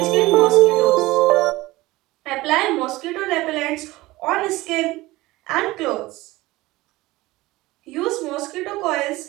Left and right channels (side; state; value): left; quieter; 19.4 dB